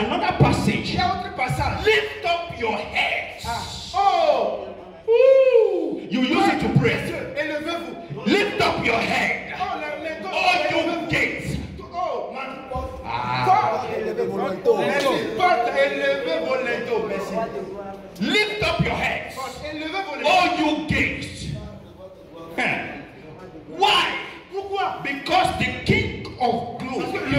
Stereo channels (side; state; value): both; identical; correlation 1.00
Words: Il passage. y a autre passage. Lift up your heads. Oh, Ooh, you use it to pray. élevez-vous. Lift up your head. Oh, les All you gates. Oh, man. Ah. Élevez vos linteaux. Élevez vos linteaux. Merci. Lift up your heads. Élevez vos linteaux. All you gates. Why? Pourquoi? Because the King of Parce glory. que